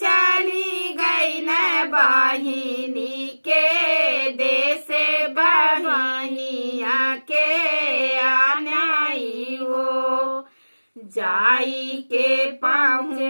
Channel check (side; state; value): both; inverted; correlation -1.00